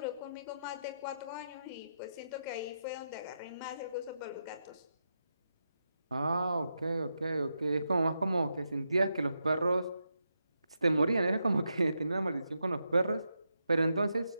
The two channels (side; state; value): both; inverted; correlation -0.85